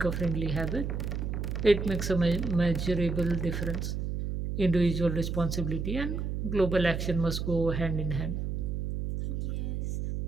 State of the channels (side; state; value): right; noise; hum, 2 dB below the sound